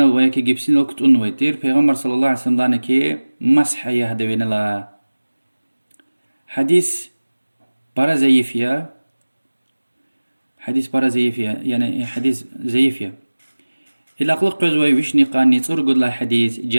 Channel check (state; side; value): inverted; both; correlation -1.00